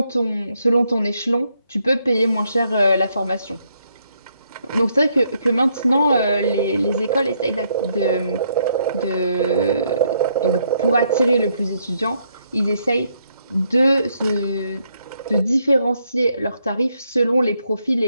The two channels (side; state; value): both; inverted; correlation -0.74